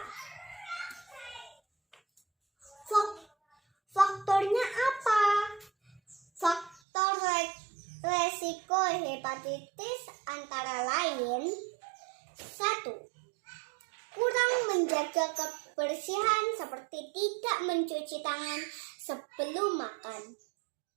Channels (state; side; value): drops out; left; at 6.8 s